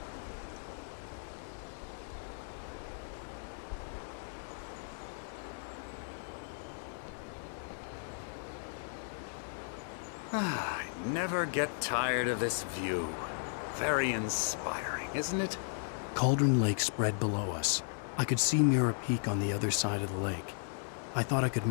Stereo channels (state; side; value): silent; right; digital silence